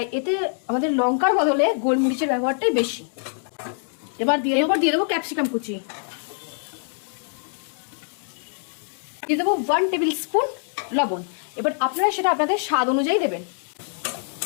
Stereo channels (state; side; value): silent; right; 62 dB below the other